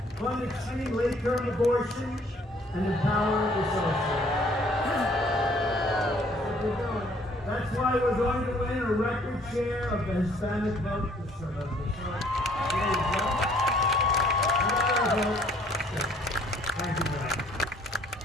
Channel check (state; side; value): normal; both; correlation 0.60